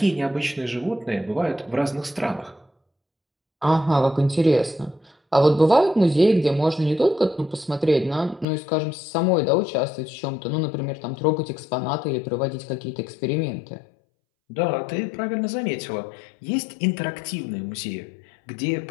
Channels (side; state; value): right; drops out; at 8.5 s